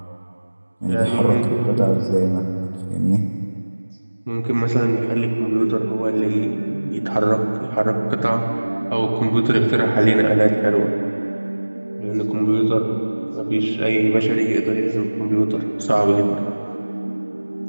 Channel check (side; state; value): both; inverted; correlation -1.00